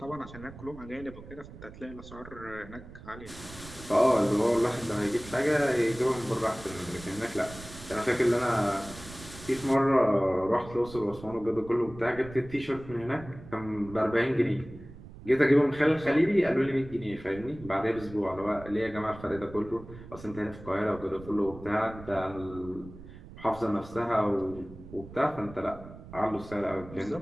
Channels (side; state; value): right; noise; rumble, 16 dB below the sound